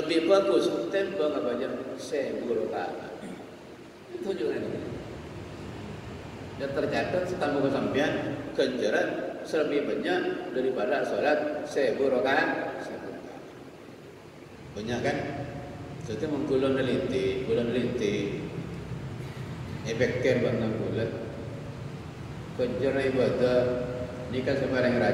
bagus tembang apa aja 1000 rakaat. Itu juga ini. Dan tercatat setambah kesampian ganjaran lebih banyak daripada salat 1000 rakaat. Banyak kan? Jadi menggulan neliti efeknya bantang bulat kejar ibadah ni kan sembarang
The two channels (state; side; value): identical; both; correlation 1.00